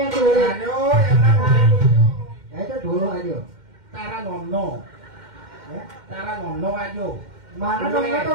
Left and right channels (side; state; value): left; late; 2.1 ms